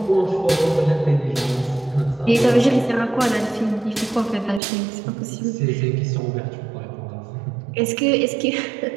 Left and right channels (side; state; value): left; drops out; at 4.6 s